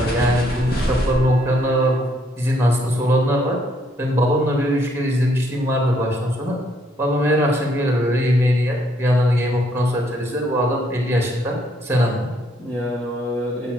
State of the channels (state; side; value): normal; both; correlation 0.70